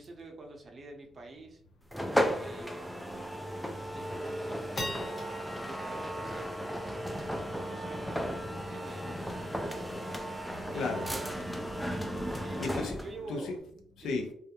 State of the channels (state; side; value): normal; both; correlation 0.87